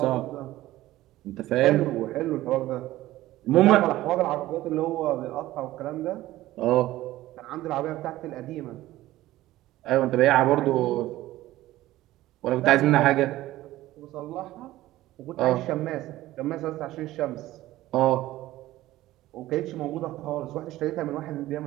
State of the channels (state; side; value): quieter; left; 16.0 dB